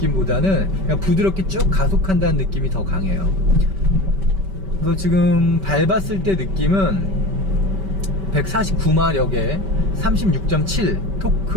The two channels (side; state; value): left; late; 5.2 ms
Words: 그냥 부드럽게 쭉 가속한다는 느낌이 더 강해요. 그래서 지금 밟았을 때 느낌은 149마력에 36.7